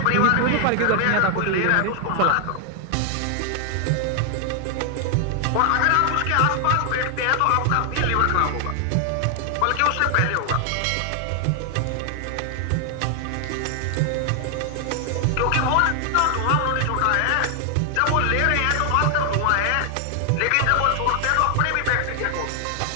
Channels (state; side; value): different; both; correlation 0.00